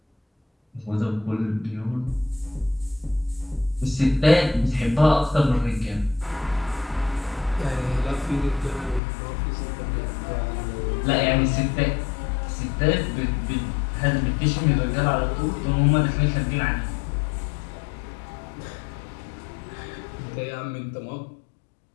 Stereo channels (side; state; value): right; drops out; at 9.0 s